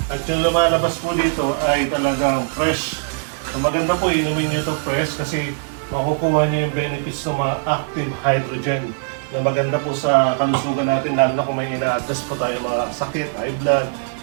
At yung lumalabas po dito ay talagang fresh. So, maganda po inumin nyo ito fresh kasi makukuha nyo yung benefits ng mga active hydrogen na maganda po sa kalusugan natin, lalo na kung may ina-address po tayo mga sakit, high blood,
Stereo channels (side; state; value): left; silent; digital silence